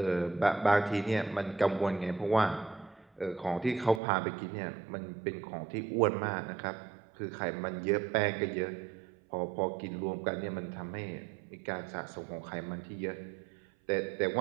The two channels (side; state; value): left; drops out; at 4.0 s